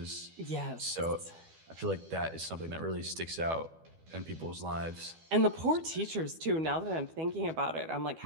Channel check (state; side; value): late; left; 12 ms